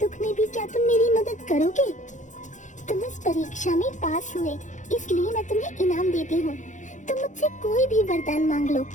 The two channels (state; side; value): late; right; 0.36 ms